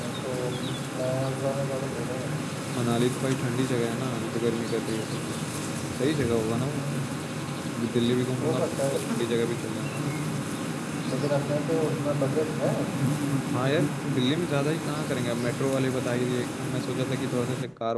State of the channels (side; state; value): both; identical; correlation 1.00